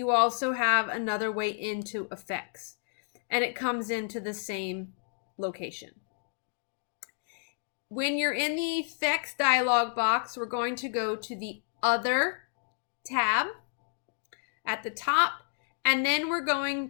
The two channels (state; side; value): silent; right; digital silence